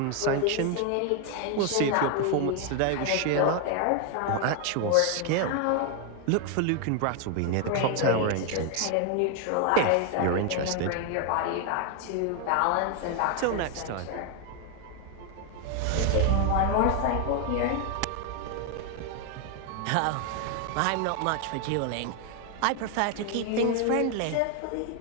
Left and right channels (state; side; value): different; both; correlation 0.01